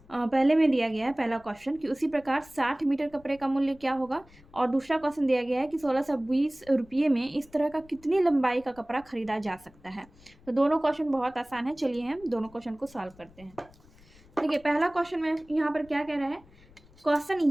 पहले में दिया गया है पहला क्वेश्चन कि उसी प्रकार 60 मीटर कपड़े का मूल्य क्या होगा, और दूसरा क्वेश्चन दिया गया है कि 1620 रुपये में इस तरह का कितनी लंबाई का कपड़ा खरीदा जा सकता है। तो दोनों क्वेश्चन बहुत आसान है, चलिए हम दोनों क्वेश्चन को सॉल्व करते हैं। देखिए, पहला क्वेश्चन में यहाँ पर क्या कह रहा है, क्वेश्चन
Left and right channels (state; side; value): noise; left; rumble, 26 dB below the sound